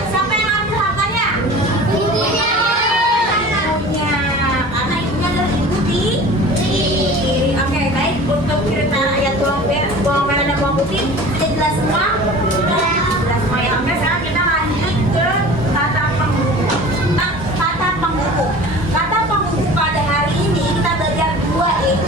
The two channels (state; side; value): normal; both; correlation 0.41